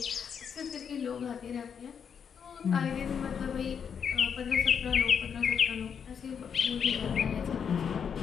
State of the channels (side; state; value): right; quieter; 7.2 dB